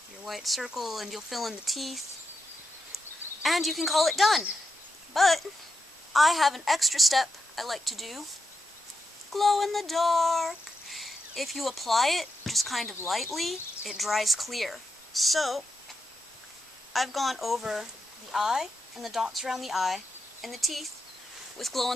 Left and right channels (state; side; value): normal; both; correlation 0.84